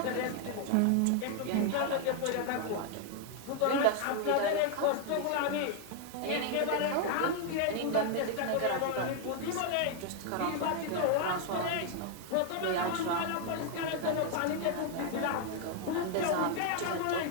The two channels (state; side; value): different; both; correlation 0.00